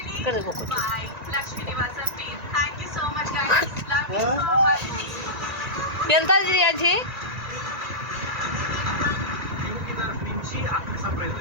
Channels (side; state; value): left; late; 1.9 ms